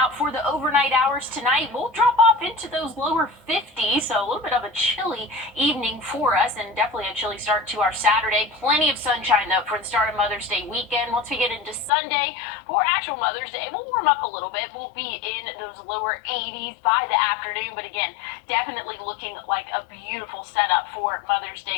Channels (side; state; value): right; drops out; at 11.9 s